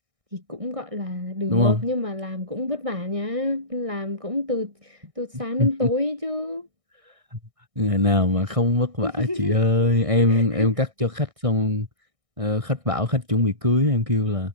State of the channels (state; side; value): late; left; 1.6 ms